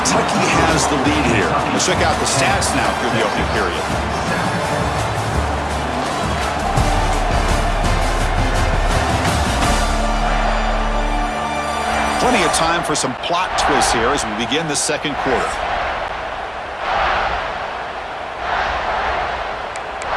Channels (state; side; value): identical; both; correlation 1.00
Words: has the lead here. Let's check out the stats now through the opening period. Plenty of time for some plot twists here as we begin the 2nd quarter.